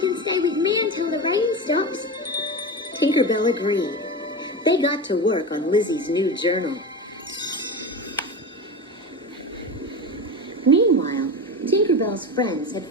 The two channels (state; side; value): normal; both; correlation 0.24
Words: stay with me until the rain stops. Tinkerbell agreed. They got to work on Lizzy's new journal. Meanwhile, Tinkerbell's friends had